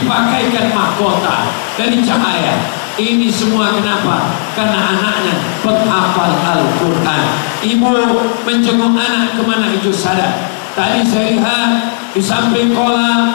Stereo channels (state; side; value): silent; right; digital silence